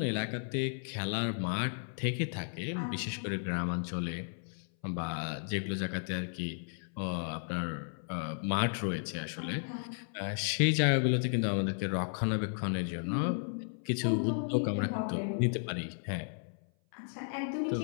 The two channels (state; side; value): silent; right; 55 dB below the other